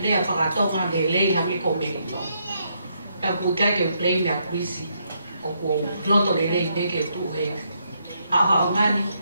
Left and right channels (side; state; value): both; inverted; correlation -0.76